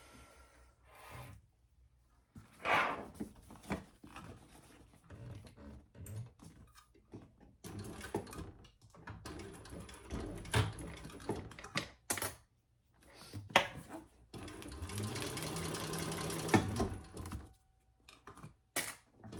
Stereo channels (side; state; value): both; identical; correlation 1.00